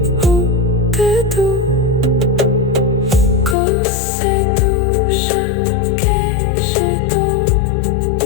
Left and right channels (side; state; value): right; drops out; at 3.6 s